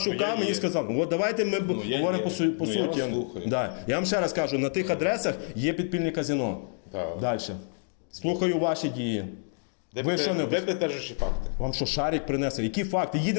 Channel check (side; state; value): right; silent; 59 dB below the other